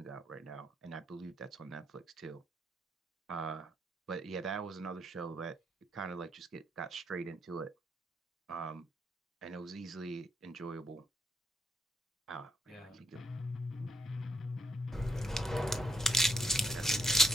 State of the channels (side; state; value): both; normal; correlation 0.75